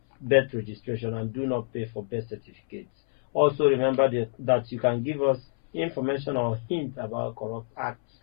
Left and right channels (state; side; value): silent; right; 60 dB below the other